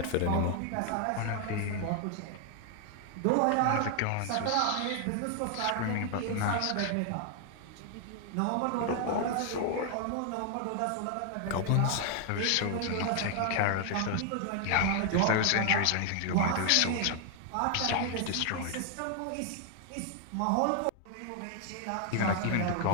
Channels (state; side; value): different; both; correlation 0.00